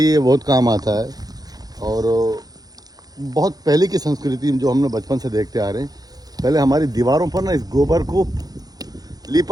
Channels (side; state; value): left; late; 0.19 ms